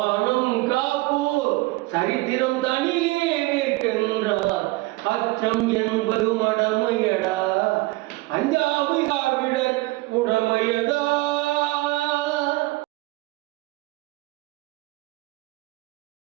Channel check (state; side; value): quieter; left; 20.9 dB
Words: காப்போர் சரித்திரம் தனியே நிற்கின்றார். அச்சம் என்பது மடமையடா, அஞ்சாமை திராவிடர் உடமையடா.